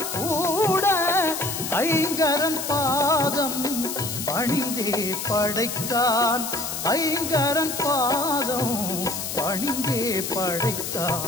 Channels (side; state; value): left; noise; hiss, 5 dB below the sound